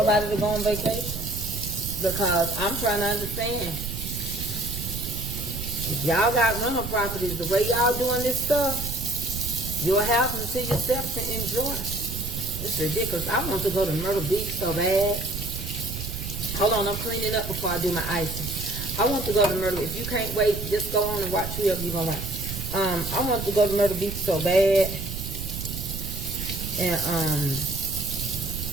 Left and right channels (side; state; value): right; noise; rumble, 7 dB below the sound